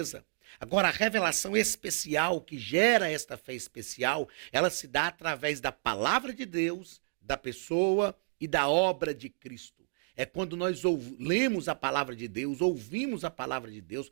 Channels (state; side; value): silent; left; digital silence